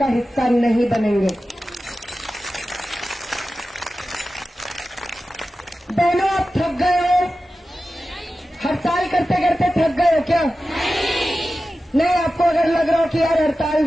हिस्सा नहीं बनेंगे। बहनों, आप थक गए हो? हड़ताल करते करते थक गए हो क्या? नहीं, आपको अगर लग रहा हो कि यार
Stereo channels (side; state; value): both; normal; correlation 0.94